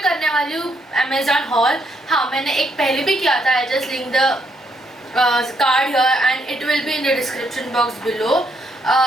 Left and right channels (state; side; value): normal; both; correlation 0.74